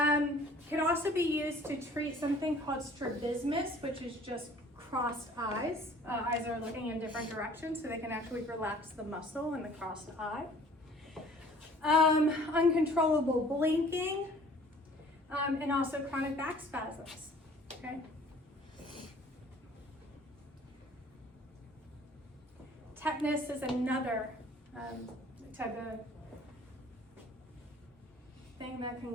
also be used to treat something called strabismus, which is just crossed eyes. Eyes are looking in different directions, so they can actually relax the muscle in the crossed eye. Uncontrollable blinking, and also chronic back spasms, okay? Tetanus is another type of thing that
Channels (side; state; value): both; normal; correlation 0.52